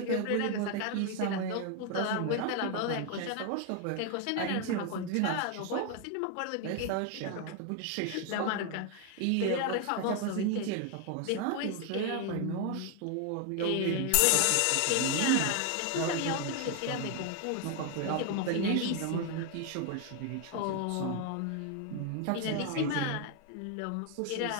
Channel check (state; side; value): different; both; correlation 0.01